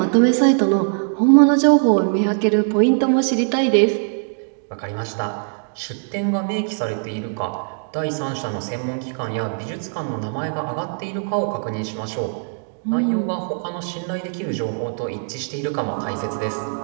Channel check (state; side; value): silent; left; digital silence